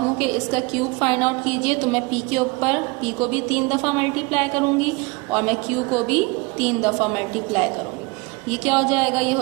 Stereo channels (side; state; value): left; quieter; 26.3 dB